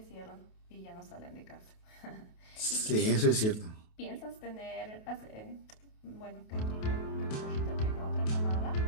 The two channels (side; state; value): right; late; 28 ms